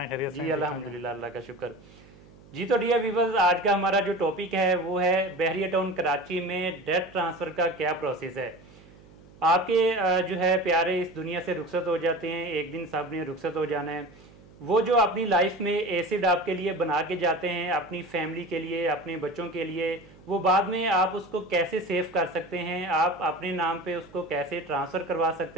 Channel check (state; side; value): noise; right; hum, 23 dB below the sound